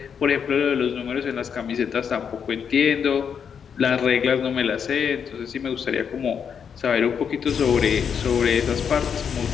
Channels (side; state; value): right; quieter; 7.2 dB